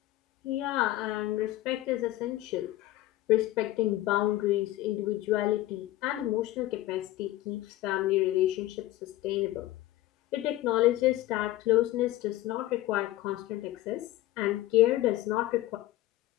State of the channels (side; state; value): right; quieter; 15.9 dB